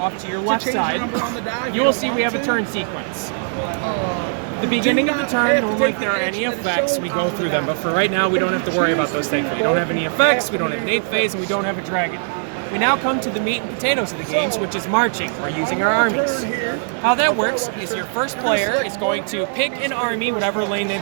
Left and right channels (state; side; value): silent; left; 65 dB below the other